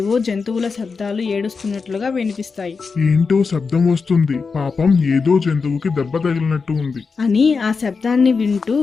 జంతువుల శబ్దాలు ఏడుస్తున్నట్లుగా వినిపిస్తాయి. ఏంటో శబ్దం వస్తుంది, పాపం ఏదో జంతువుకి దెబ్బ తగిలినట్టు ఉంది అని ఆ శబ్దాన్ని వింటూ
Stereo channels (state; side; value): quieter; right; 4.9 dB